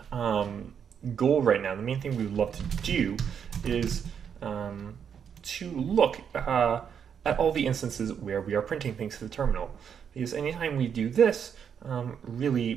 goal right now, the main thing we would love to do is to look at all the instances where we are printing things to the terminal. Because anytime we do this,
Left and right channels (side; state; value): left; quieter; 7.6 dB